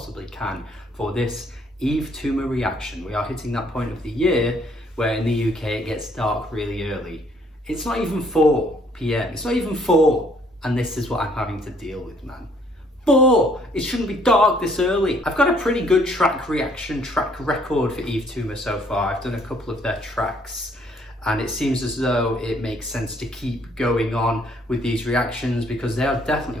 can for this Yves Tumor reaction. We are hitting that point of the year where in the UK it gets dark really early. It's not even 4 p.m. It's not even 4, and this is what I'm having to deal with, man. 4! It shouldn't be dark this early. I've got a pretty good track record for Yves Tumor so far. I've done a couple of their tracks, and it seems as though it makes sense to keep going on with these reactions because they are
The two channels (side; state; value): both; normal; correlation 0.64